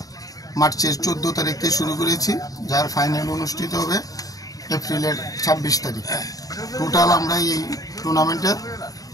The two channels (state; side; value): late; right; 0.18 ms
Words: মার্চের 14 তারিখে শুরু করেছি, যার ফাইনাল অনুষ্ঠিত হবে এপ্রিলের 26 তারিখ। টোটাল আমরা এই টুর্নামেন্টে